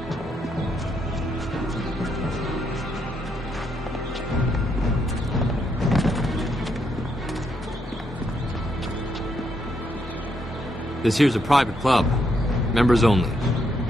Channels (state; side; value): normal; both; correlation 0.77